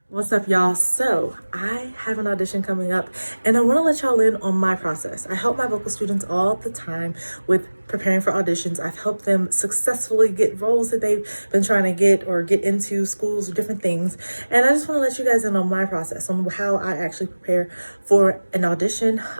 What's up, y'all? So I have an audition coming up and I want to let y'all in on my process. I help my vocal students all the time with preparing for auditions. I've helped them successfully get roles that they've been trying to get or get into schools or different things. And I just want to let you guys in on my process, on how I actually prepare for an audition.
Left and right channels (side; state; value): both; inverted; correlation -1.00